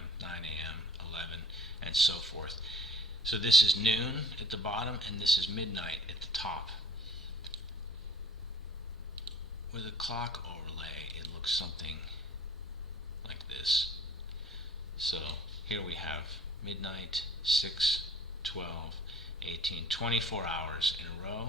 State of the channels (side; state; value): both; normal; correlation 0.51